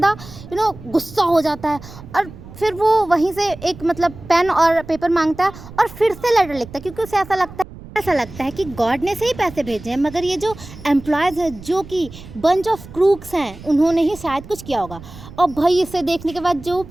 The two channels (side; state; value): right; noise; rumble, 16 dB below the sound